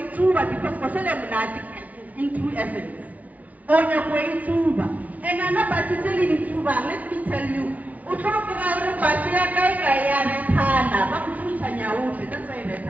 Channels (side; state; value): left; late; 0.072 ms